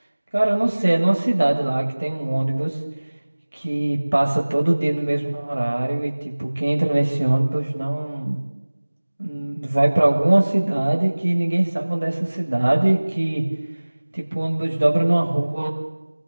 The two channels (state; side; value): inverted; both; correlation -1.00